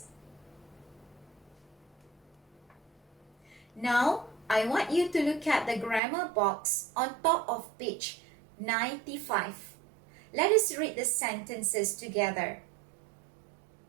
Now, I want you to look at the grammar box on top of page 95. Let us read the sentences together.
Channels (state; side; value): drops out; left; at 6.0 s